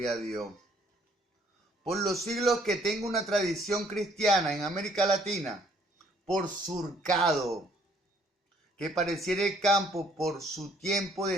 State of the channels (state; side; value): normal; both; correlation 0.62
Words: a Dios. Por los siglos que tengo una tradición cristiana en América Latina, por surcado, que pareciera el campo por su tiempo